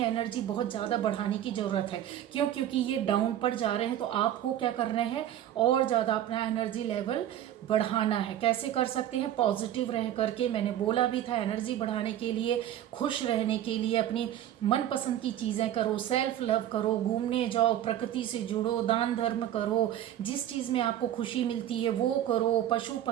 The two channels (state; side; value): quieter; left; 11.7 dB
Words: एनर्जी बहुत ज़्यादा बढ़ाने की ज़रूरत है। क्यों? क्योंकि ये डाउन पर जा रहे हैं, तो आपको क्या करना है, और ज़्यादा अपना एनर्जी लेवल बढ़ाना है। कैसे कर सकते हैं? पॉजिटिव रह करके, मैंने बोला भी था, एनर्जी बढ़ाने के लिए, खुश रहने के लिए अपनी मनपसंद की चीज़ें करो, सेल्फ लव करो, घूमने जाओ, प्रकृति से जुड़ो, दान धर्म करो, जिस चीज़ में आपको खुशी मिलती है वो करो, पशु